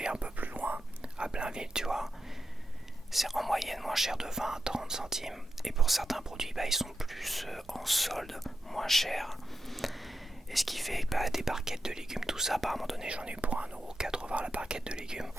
un peu plus loin, à Blainville, tu vois, c'est en moyenne moins cher de 20-30 centimes. Et pour certains produits, bah, ils sont plus en solde, moins chers. Et ce qui fait que des barquettes de légumes, tout ça, à un moment donné, j'en ai eu pour 1,80€ la barquette de légumes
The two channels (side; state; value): both; normal; correlation 0.88